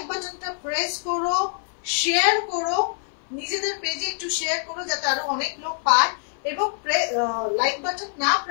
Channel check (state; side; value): silent; right; 57 dB below the other